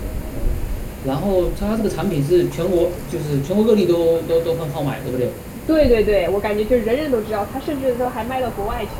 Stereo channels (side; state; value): both; identical; correlation 1.00